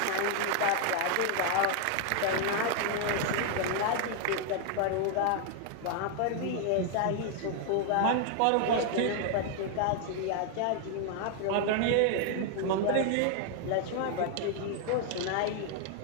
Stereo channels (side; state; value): both; different; correlation 0.00